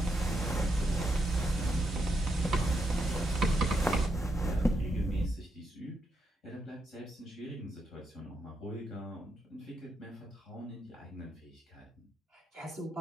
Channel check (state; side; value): normal; both; correlation 0.81